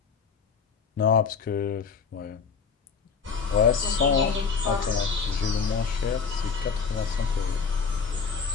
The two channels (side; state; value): right; quieter; 5.6 dB